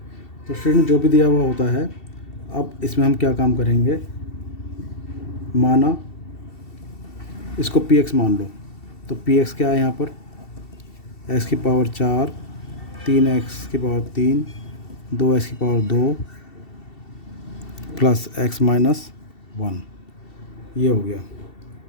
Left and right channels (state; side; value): late; right; 2.7 ms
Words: तो स्टूडेंट जो भी दिया हुआ होता है, अब इसमें हम क्या काम करेंगे, माना इसको px मान लो, तो px क्या है यहाँ पर, x की पावर 4, 3x की पावर 3, 2x की पावर 2 प्लस x माइनस 1, ये हो गया।